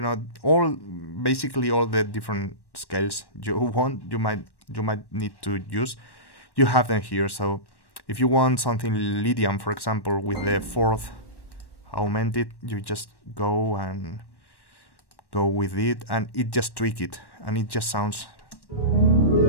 know, basically all the different scales you might need to use. You have them here. So if you want something Lydian, for example, with the fourth augmented, you just go with it, and it just tweak it, and it just sounds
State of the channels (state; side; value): late; right; 1.1 ms